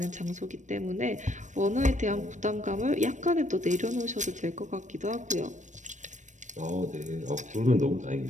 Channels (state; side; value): late; left; 0.35 ms